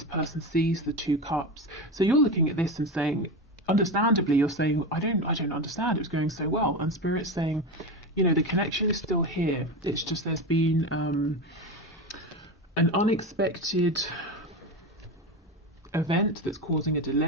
person sees the Two Cups. So you're looking at this and saying, understandably, you're saying, I don't understand, it was going so well. And Spirit's saying, you know, the connection is still here. It's just there's been an unexpected event that's causing a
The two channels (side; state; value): both; normal; correlation 0.21